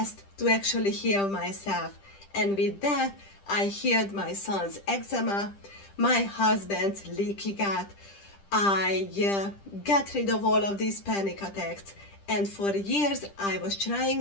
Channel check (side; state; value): right; late; 10 ms